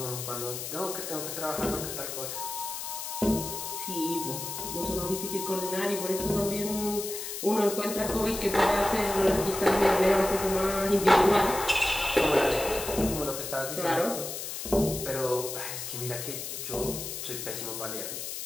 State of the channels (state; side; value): noise; left; hiss, 6 dB below the sound